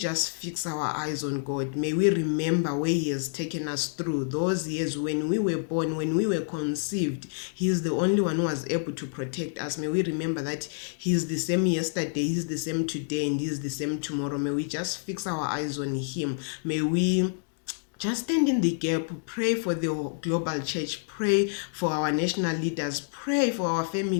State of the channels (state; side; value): silent; right; digital silence